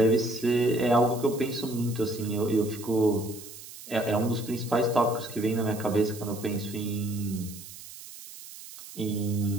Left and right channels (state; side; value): noise; right; hiss, 15 dB below the sound